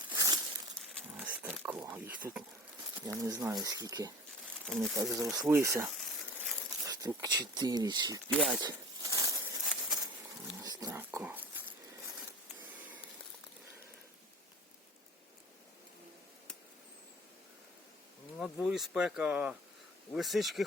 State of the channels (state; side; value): normal; both; correlation 0.39